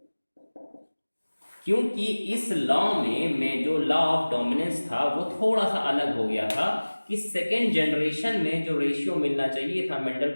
क्योंकि इस लॉ में जो लॉ ऑफ डोमिनेंस था वो थोड़ा सा अलग हो गया था कि सेकेंड जनरेशन में जो रेशियो मिलना चाहिए था मेंडल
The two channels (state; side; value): inverted; both; correlation -1.00